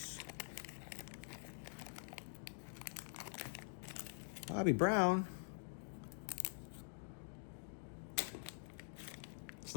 Bobby Brown. It's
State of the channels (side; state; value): right; silent; digital silence